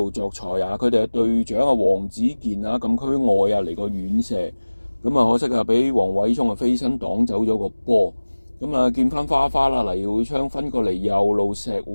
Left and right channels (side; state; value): both; inverted; correlation -1.00